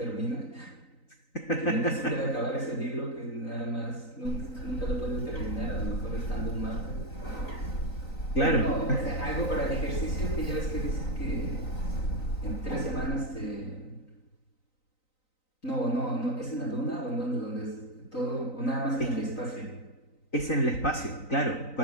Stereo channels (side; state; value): right; late; 3.9 ms